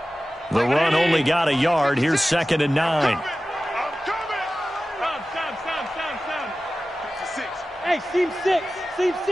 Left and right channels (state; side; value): normal; both; correlation 0.95